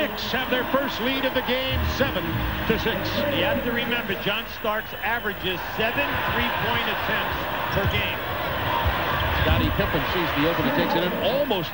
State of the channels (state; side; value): identical; both; correlation 1.00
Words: have their first lead of the game, 7-6. You have to remember, John Starks averages 7 3-point attempts per game. Scottie Pippen sees the opening, takes it in, almost